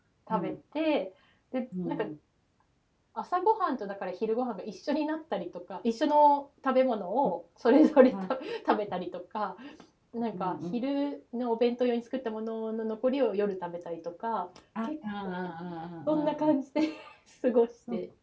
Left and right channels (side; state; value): both; identical; correlation 1.00